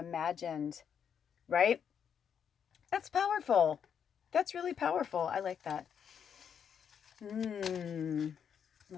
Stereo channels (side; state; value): right; quieter; 7.8 dB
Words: right? That's powerful. That's really powerful. I like that.